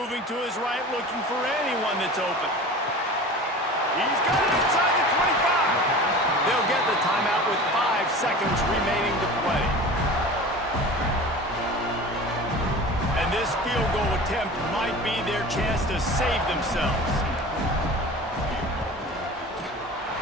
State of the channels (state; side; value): normal; both; correlation 0.37